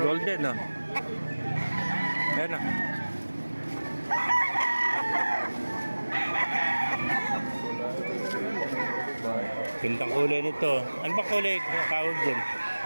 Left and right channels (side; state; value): both; inverted; correlation -1.00